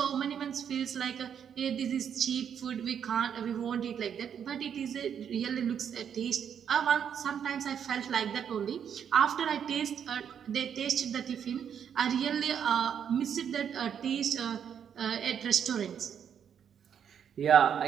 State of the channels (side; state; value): left; quieter; 8.2 dB